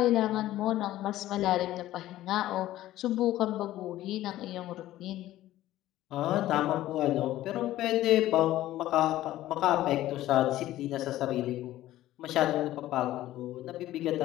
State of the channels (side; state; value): right; quieter; 14.6 dB